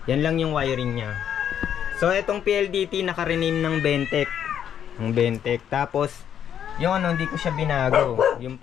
Yan lang yung wiring niya. So itong PLDT naka-rename ng Bentech. Ng Bentech. Tapos yung ano, hindi ko siya binago. Yung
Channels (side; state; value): right; quieter; 9.3 dB